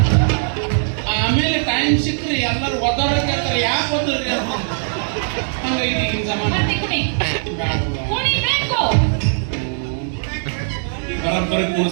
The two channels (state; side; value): silent; left; digital silence